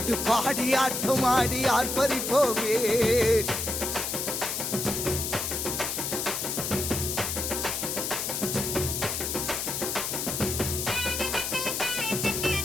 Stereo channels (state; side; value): noise; left; hiss, 2 dB below the sound